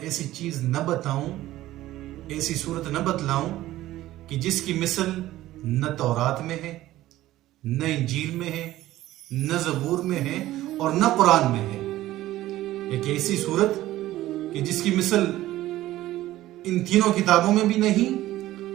ایسی چیز نہ بتاؤں، ایسی صورت نہ بتلاؤں کہ جس کی مثل نہ تورات میں ہے، نہ انجیل میں ہے، نہ زبور میں ہے اور نہ قرآن میں ہے؟ ایک ایسی صورت کہ جس کی مثل ان تینوں کتابوں میں بھی نہیں،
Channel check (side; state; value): left; quieter; 15.3 dB